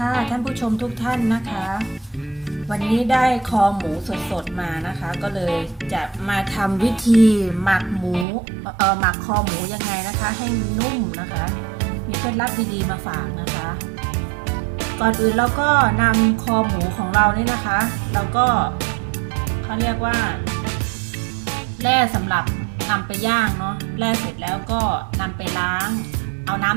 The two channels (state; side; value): drops out; left; at 8.2 s